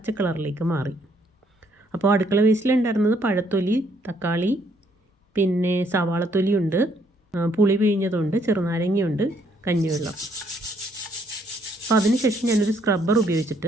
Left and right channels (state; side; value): normal; both; correlation 0.69